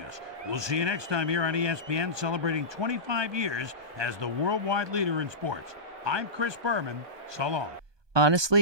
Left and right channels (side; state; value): left; late; 1.2 ms